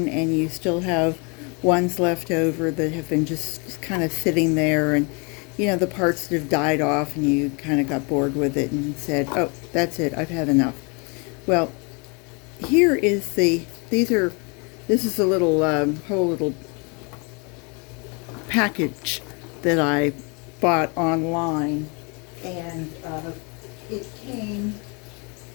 and you still have ones left over that have been just kind of sitting there, and the parts that have died off, and you kind of got bored with it and said, oh, that's it, I've had enough. Well, here is this is a little whole little package that I bought online, and it came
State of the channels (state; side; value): quieter; right; 32.5 dB